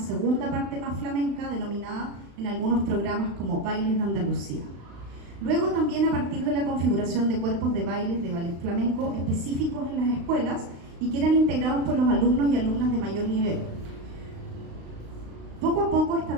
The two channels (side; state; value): left; late; 35 ms